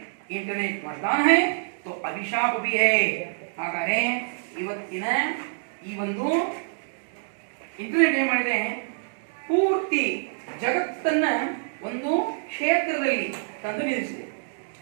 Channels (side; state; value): left; silent; digital silence